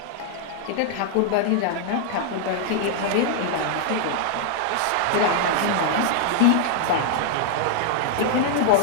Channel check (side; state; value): both; different; correlation 0.00